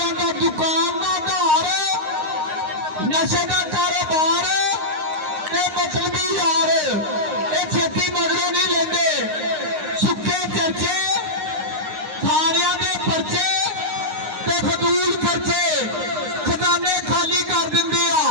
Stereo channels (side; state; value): left; late; 9.6 ms